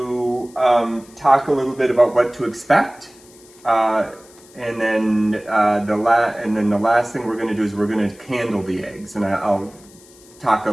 talk a little bit about what to expect, and then the last thing we're going to do is we're going to candle the eggs, and I'll talk a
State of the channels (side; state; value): left; noise; hiss, 25 dB below the sound